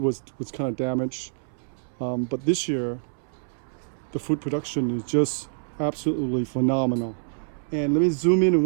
kind of damaged. But this year, the fruit production is just absolutely phenomenal. And let me zoom in on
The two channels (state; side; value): silent; left; 61 dB below the other